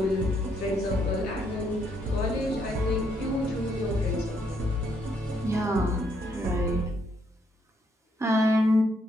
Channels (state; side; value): normal; both; correlation 0.73